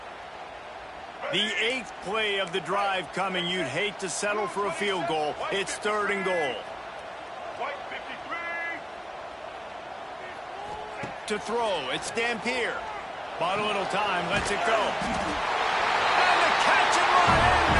The 8th play of the drive coming. You'd hate to settle for a field goal. It's third and goal. To throw, it's Dampier. Bought a little time, lets it go. And the catch and run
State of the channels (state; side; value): identical; both; correlation 1.00